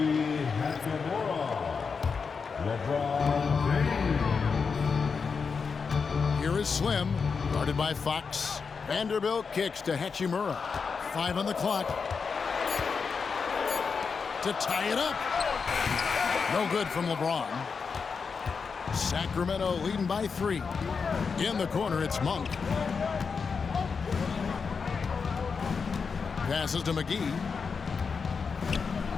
Here is Slim, guarded by Fox. Vanderbilt kicks to Hachimura. 5 on the clock. To tie it up. No good from LeBron. Sacramento leading by 3. In the corner, it's Monk. Passes to McGee.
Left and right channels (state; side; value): quieter; right; 5.4 dB